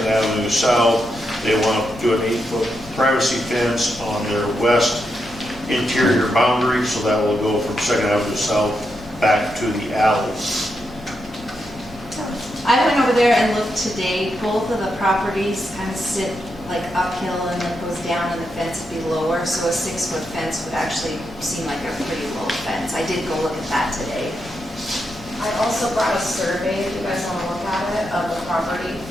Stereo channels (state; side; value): normal; both; correlation 0.84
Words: Avenue South. They want to do an 8-foot privacy fence on their west interior boundary, so that will go from 2nd Avenue South back to the alley. I went over there and looked today. Both of the properties kind of sit like uphill and then goes down and the fence would be lower. So a 6-foot fence would actually seem like a pretty low fence. I did go look at that today. I also brought a survey, if you guys want to look at it, of the property.